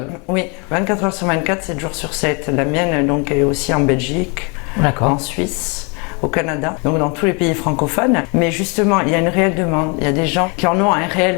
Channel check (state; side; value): quieter; right; 32.9 dB